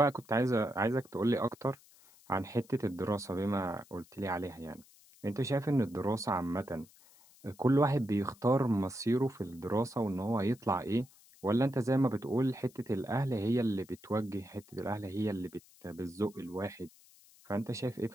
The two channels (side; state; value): left; noise; hiss, 26 dB below the sound